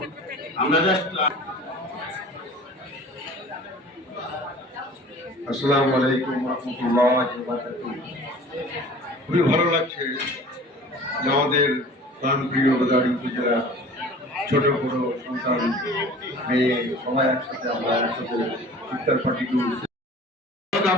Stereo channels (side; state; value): both; normal; correlation 0.44